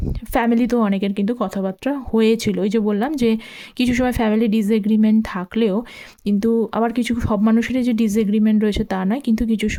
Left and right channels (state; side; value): identical; both; correlation 1.00